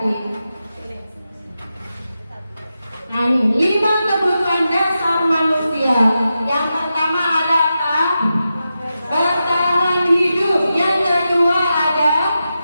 Nah ini 5 kebutuhan dasar manusia. Yang pertama adalah bertahan hidup. Yang kedua ada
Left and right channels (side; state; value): both; inverted; correlation -0.89